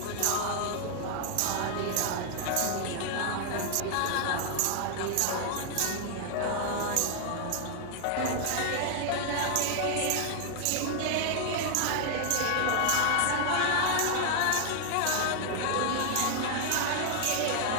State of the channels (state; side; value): different; both; correlation 0.00